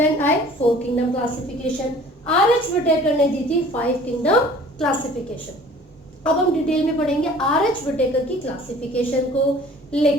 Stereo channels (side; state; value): both; normal; correlation 0.49